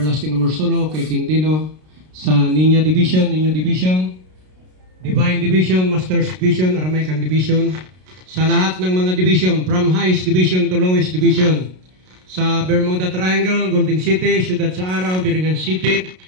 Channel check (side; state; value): left; late; 33 ms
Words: Amorsolo, kay King Dino, sa Niño Division, Divine Division, Masters Division, Aramaican Division, sa lahat ng mga division, from highest division to lowest division, sa Bermuda Triangle, Golden City, Ciudad sa Araw, Biringan City,